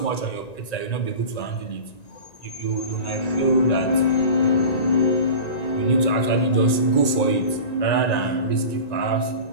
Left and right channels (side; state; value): right; late; 1.9 ms